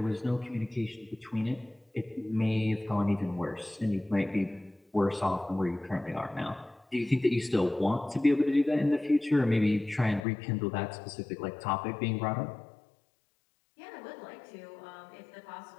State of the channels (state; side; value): drops out; right; at 10.2 s